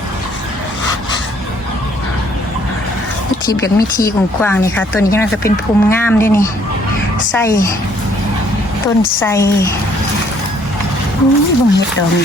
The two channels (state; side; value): normal; both; correlation 0.63